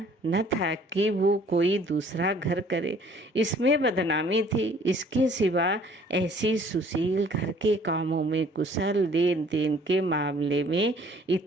न था कि वो कोई दूसरा घर करे, इसमें बदनामी थी। इसके सिवा ऐसी सुशील, घर के कामों में कुशल, लेन देन के मामले में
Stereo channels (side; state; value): both; normal; correlation 0.56